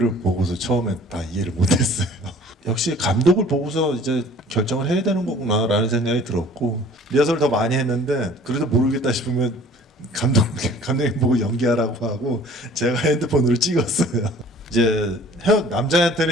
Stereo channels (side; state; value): both; normal; correlation 0.50